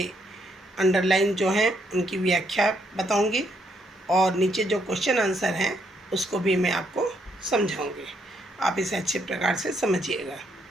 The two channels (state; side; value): normal; both; correlation 0.73